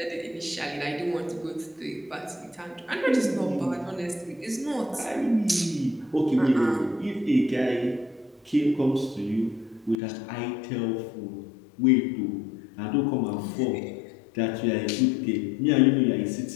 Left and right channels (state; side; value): drops out; right; at 10.0 s